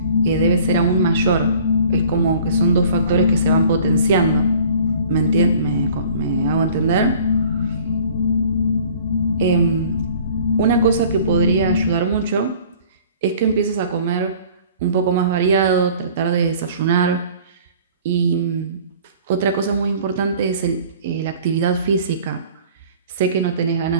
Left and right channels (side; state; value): both; inverted; correlation -0.49